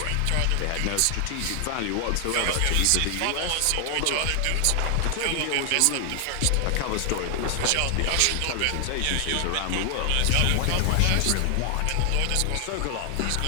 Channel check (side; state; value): both; different; correlation 0.00